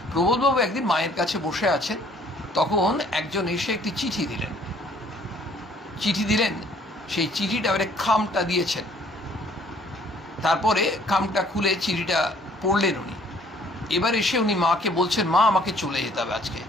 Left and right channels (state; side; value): normal; both; correlation 0.59